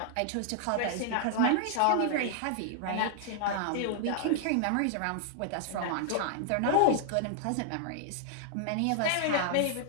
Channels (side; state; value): both; different; correlation -0.01